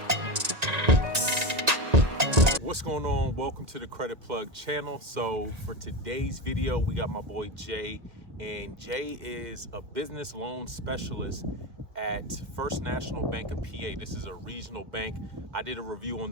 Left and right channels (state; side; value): late; left; 1.9 ms